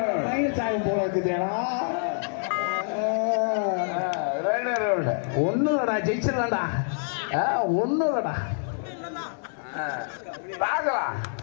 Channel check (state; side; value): silent; right; digital silence